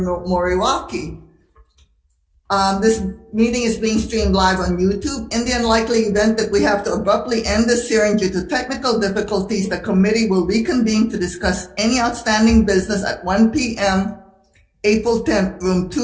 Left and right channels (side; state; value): both; identical; correlation 1.00